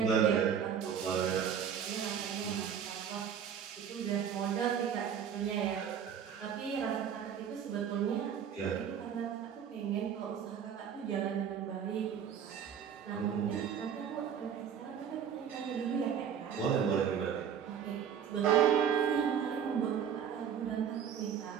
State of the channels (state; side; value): quieter; left; 8.1 dB